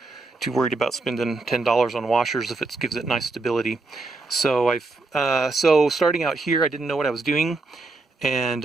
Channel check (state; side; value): quieter; left; 3.5 dB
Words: too worried about spending $10 on washers if it gives it nice stability. So so starting out here, I didn't know what I was doing, and